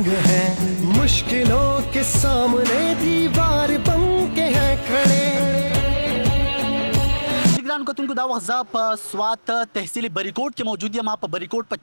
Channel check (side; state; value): both; inverted; correlation -1.00